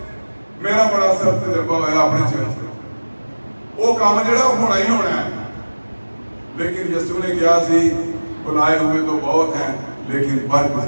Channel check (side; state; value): both; inverted; correlation -1.00